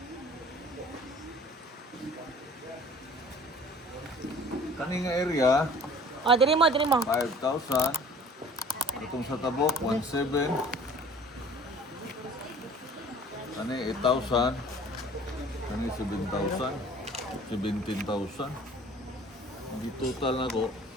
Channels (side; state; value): both; normal; correlation 0.48